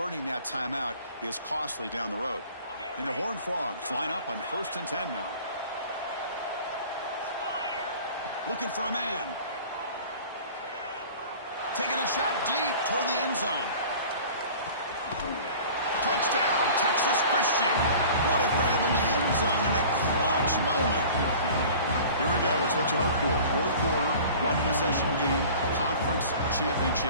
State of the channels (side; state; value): both; inverted; correlation -0.43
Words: that timeout is costly down the road. And the Horned Frogs line up on 1st and 10 now. Looking for a man. Taking a shot deep toward the end zone. Touchdown, Texas Christian. What a grab in the end zone in a clutch moment. Here we go. It's what you hope for. Fourth quarter, one-possession game, conference